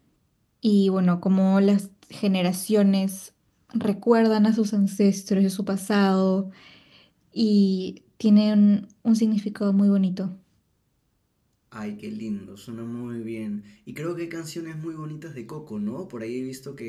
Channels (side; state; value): both; identical; correlation 1.00